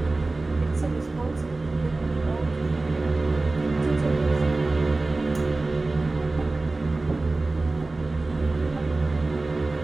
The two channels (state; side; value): quieter; left; 3.2 dB